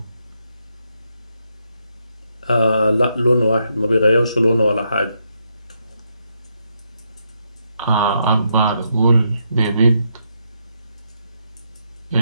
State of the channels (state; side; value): inverted; both; correlation -0.79